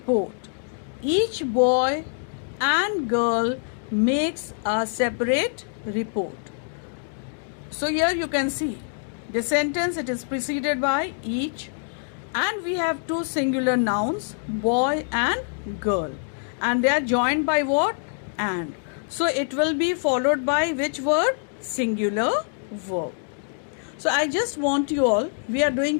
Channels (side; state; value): right; silent; digital silence